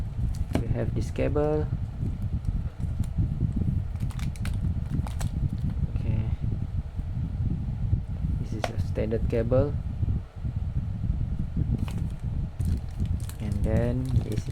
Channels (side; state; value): both; identical; correlation 1.00